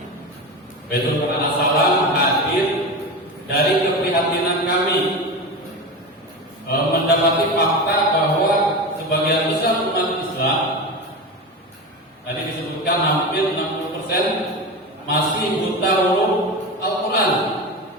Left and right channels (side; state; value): both; normal; correlation 0.24